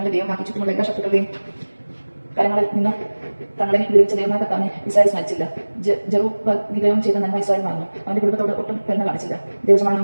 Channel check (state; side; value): inverted; both; correlation -1.00